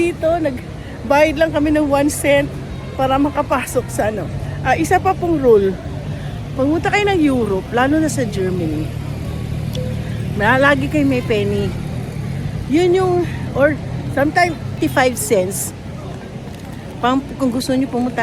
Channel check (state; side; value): identical; both; correlation 1.00